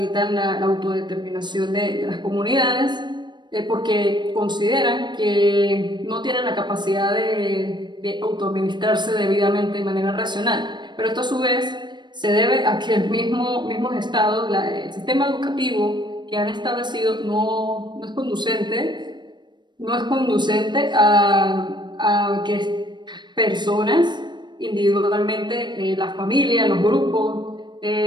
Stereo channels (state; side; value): late; left; 0.22 ms